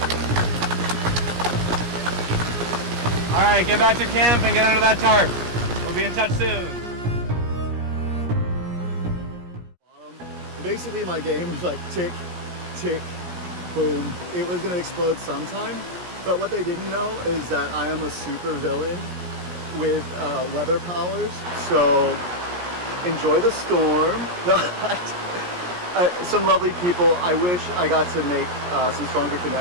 Alright, get back to camp and get under that tarp. We'll be in touch soon. Basically, my game was like tick, tick, boom. It was gonna explode sometime. But what they didn't know is that I am a super villain with weather powers. So enjoy the storm. No, some lovely people. I wish I got to make some stronger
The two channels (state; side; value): late; left; 17 ms